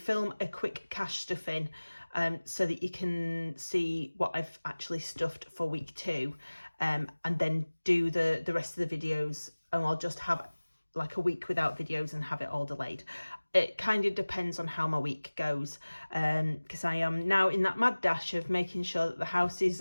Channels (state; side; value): inverted; both; correlation -1.00